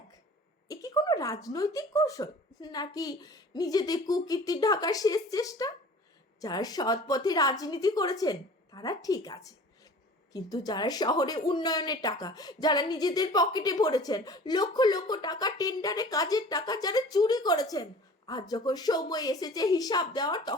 এ কি কোনো রাজনৈতিক কৌশল, নাকি নিজেদের কুকীর্তি ঢাকার শেষ চেষ্টা? যারা সৎ পথে রাজনীতি করেছেন তারা ঠিক আছে, কিন্তু যারা শহরে উন্নয়নের টাকা যারা নিজেদের পকেটে ভরেছেন, লক্ষ লক্ষ টাকা টেন্ডারে কাজের টাকা যারা চুরি করেছেন, আজ যখন সময় এসেছে হিসাব দেওয়ার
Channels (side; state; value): both; normal; correlation 0.44